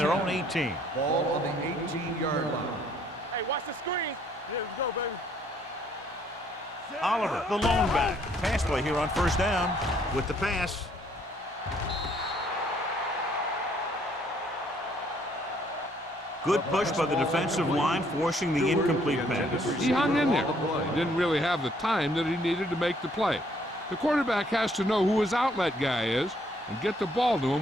own 18. Ball on the 18-yard line. Hey, watch the screen. Here we go, baby. Oliver, the lone back. Pass play here on first down with the pass. Good push by the defensive line, forcing the incomplete pass. He hung in there. He didn't really have the time that he needed to make the play. The quarterback has to know who his outlet guy is and get the ball to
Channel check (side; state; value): both; normal; correlation 0.65